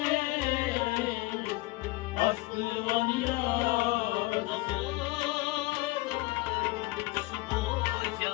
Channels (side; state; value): right; quieter; 21.1 dB